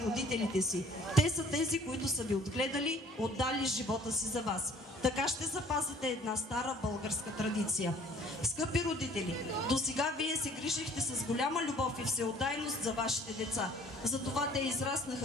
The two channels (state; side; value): normal; both; correlation 0.54